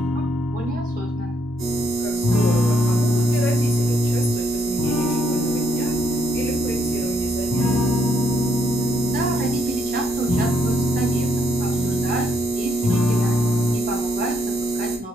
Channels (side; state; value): both; normal; correlation 0.74